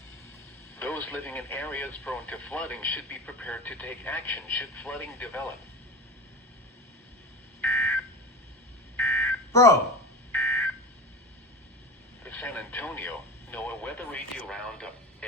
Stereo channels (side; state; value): both; normal; correlation 0.31